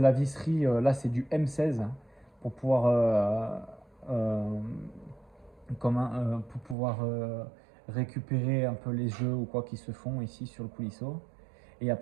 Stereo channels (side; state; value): left; drops out; at 6.8 s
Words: visserie, là c'est du M16 pour pouvoir récupérer un peu les jeux ou quoi qui se font ici sur le coulisseau. Et